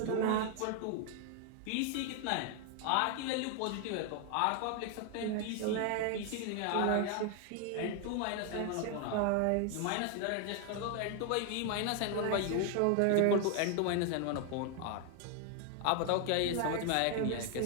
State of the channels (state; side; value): different; both; correlation 0.01